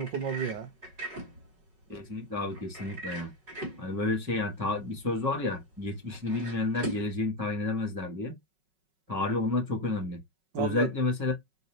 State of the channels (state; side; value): late; left; 5.4 ms